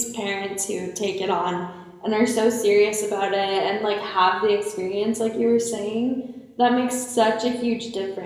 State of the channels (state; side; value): identical; both; correlation 1.00